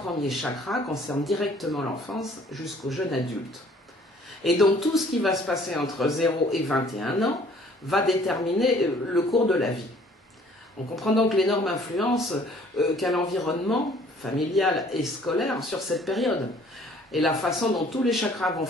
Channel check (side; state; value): both; normal; correlation 0.56